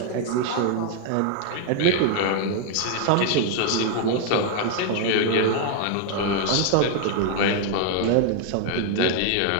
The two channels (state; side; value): different; both; correlation 0.00